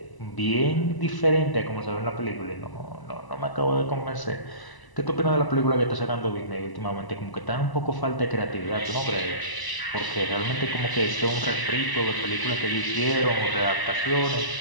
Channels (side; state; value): right; late; 1.0 ms